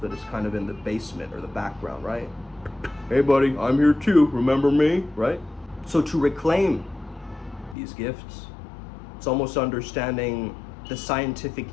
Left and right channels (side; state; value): right; drops out; at 7.8 s